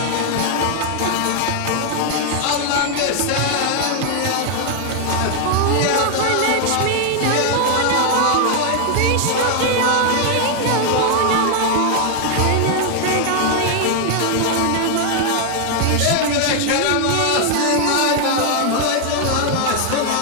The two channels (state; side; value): different; both; correlation 0.00